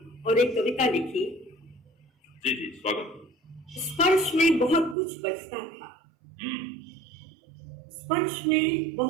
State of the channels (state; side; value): drops out; left; at 5.0 s